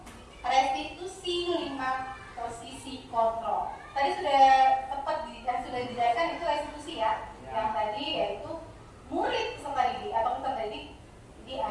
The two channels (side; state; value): both; identical; correlation 1.00